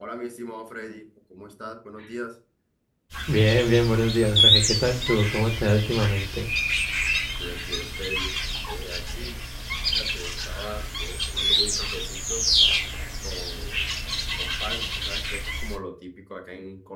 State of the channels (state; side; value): identical; both; correlation 1.00